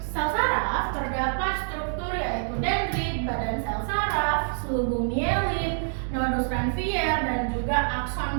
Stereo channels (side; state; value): left; silent; digital silence